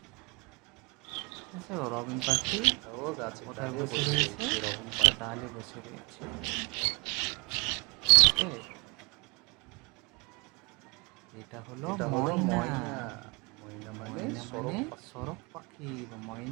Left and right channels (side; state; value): left; quieter; 27.2 dB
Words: ঠিক আছে, রবিন পাখি ও গাছে কোথায় ডালে বসে রয়েছে? রকম একটা ডালে বসে রয়েছে। ওকে। এটা হলো ময়না। ময়না মানে ময়না সরক মানে পাখি। সরক পাখি বা